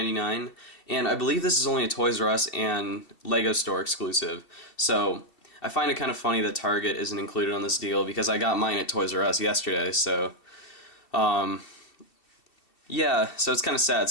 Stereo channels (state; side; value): late; right; 2.7 ms